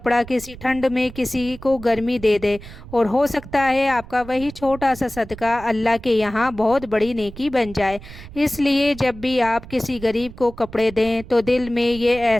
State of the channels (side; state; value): right; noise; rumble, 16 dB below the sound